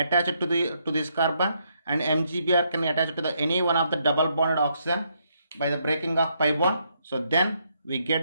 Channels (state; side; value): inverted; both; correlation -0.75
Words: to this carbon, and MgBr can be attached to the any one of the double bonded oxygen by the breaking of pi bond. So then we